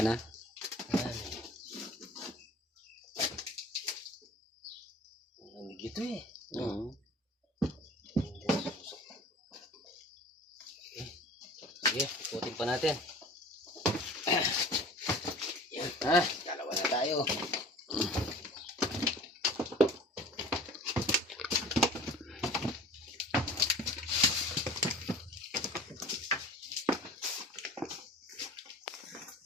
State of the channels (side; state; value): both; normal; correlation 0.43